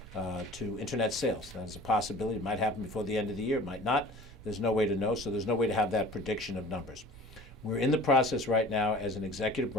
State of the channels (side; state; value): both; normal; correlation 0.44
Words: to internet sales. That is a possibility. It might happen before the end of the year. It might not. There's no way to know, so there's no way to have that prediction of numbers. We're in the process right now as an executive